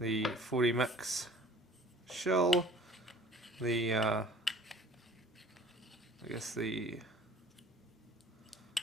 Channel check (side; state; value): both; normal; correlation 0.50